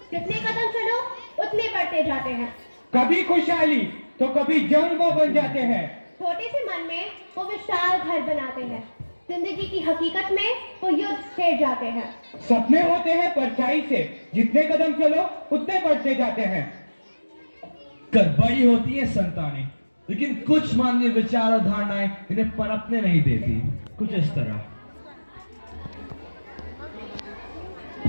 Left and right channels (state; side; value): inverted; both; correlation -1.00